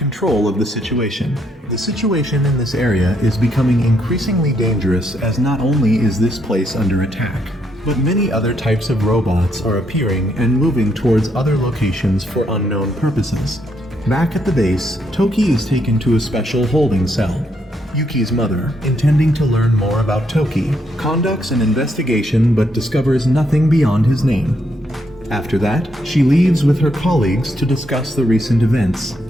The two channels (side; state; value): both; normal; correlation 0.75